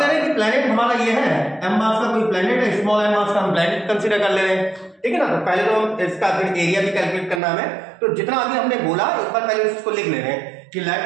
रहे हैं कि प्लैनेट हमारा ये है, m मास का कोई प्लैनेट है, स्मॉल m मास का हम प्लैनेट कंसीडर कर ले रहे हैं, ठीक है ना। तो पहले तो हम इसका फिर एरिया भी कैलकुलेट करना है। तो जितना अभी हमने बोला एक बार पहले इसको लिख ले रहे हैं कि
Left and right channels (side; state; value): left; drops out; at 7.4 s